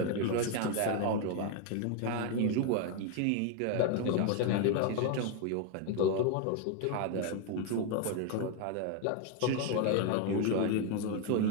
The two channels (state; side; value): different; both; correlation 0.01